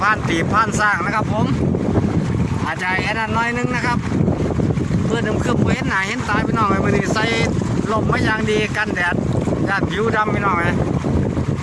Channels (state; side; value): identical; both; correlation 1.00